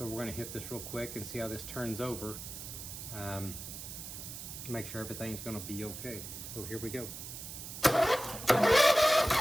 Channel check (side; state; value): right; noise; hiss, 9 dB below the sound